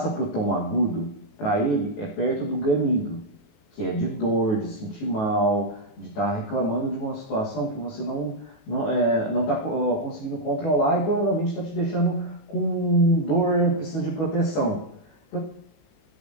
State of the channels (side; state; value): right; late; 19 ms